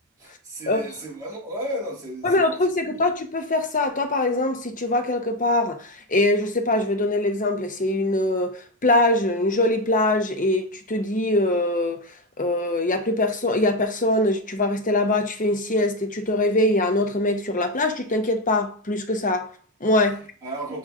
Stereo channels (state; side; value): normal; both; correlation 0.11